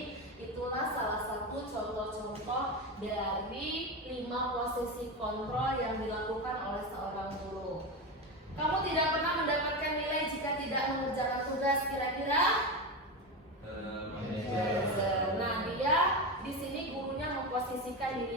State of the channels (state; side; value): normal; both; correlation 0.17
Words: itulah salah satu contoh-contoh dari 5 posisi kontrol yang dilakukan oleh seorang guru. Kamu tidak pernah mendapatkan nilai jika tidak mengerjakan tugas. Kira-kira? Nah, dia di sini gurunya memposisikan